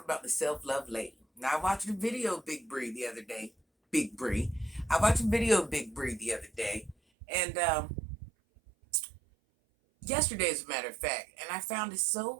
about the self-love lady. Now, I watched a video of Big Bree the other day. Big Bree. I watched a video of Big Bree the other day, and yesterday, as a matter of fact, and I found it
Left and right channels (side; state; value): left; drops out; at 7.0 s